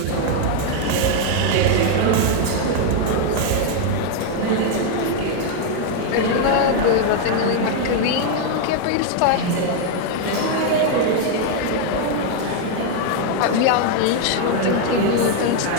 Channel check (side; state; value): both; different; correlation 0.00